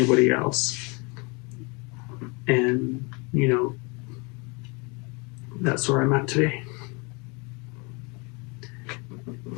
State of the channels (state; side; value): quieter; right; 30.1 dB